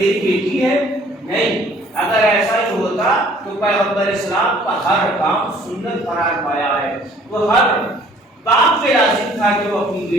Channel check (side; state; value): both; normal; correlation 0.56